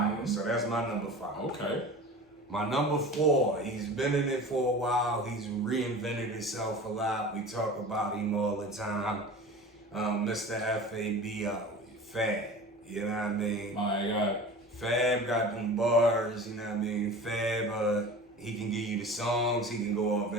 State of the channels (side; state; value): both; normal; correlation 0.37